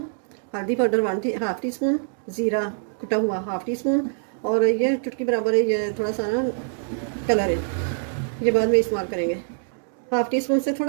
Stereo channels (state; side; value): silent; left; digital silence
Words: हल्दी पाउडर हाफ़ टी स्पून, ज़ीरा कुटा हुआ हाफ़ टी स्पून, और ये चुटकी बराबर है ये थोड़ा सा ना कलर है, ये बाद में इस्तेमाल करेंगे। हाफ़ टी स्पून से